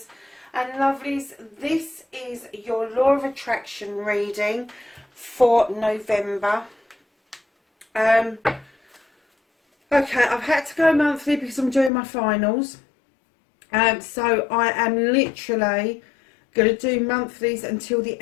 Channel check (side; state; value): right; drops out; at 11.9 s